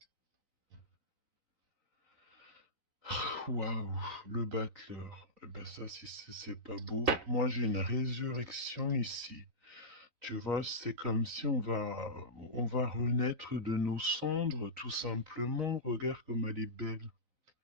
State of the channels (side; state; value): left; late; 3.9 ms